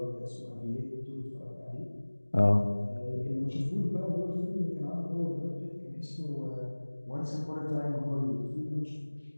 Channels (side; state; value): both; inverted; correlation -1.00